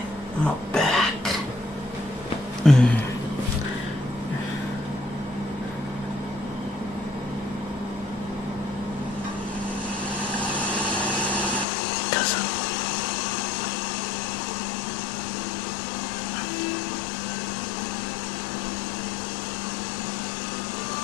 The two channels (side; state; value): right; drops out; at 11.7 s